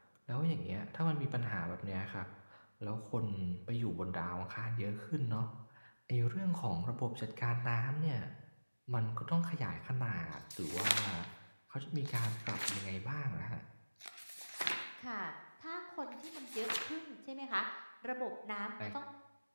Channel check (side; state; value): both; inverted; correlation -1.00